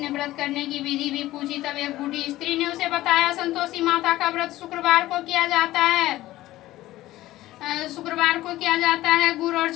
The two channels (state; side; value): quieter; right; 16.1 dB